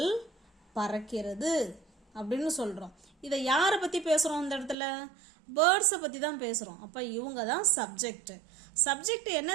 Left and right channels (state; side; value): drops out; left; at 4.8 s